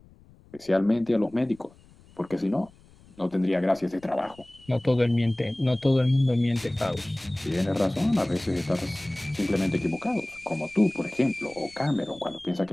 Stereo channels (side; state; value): left; noise; rumble, 26 dB below the sound